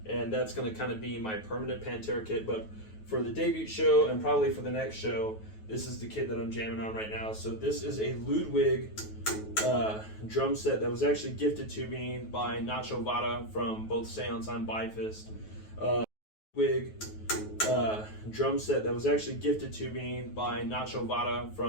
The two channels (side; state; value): right; late; 9.3 ms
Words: and that's going to kind of be my permanent Pantera kit. But for the debut show and probably for the next show, this is the kit that I'm jamming on right now. So this is a Ludwig drum set that was actually gifted to me by Nacho Vada from both Seance and Bifist. Drum set that was actually gifted to me by Nacho Vada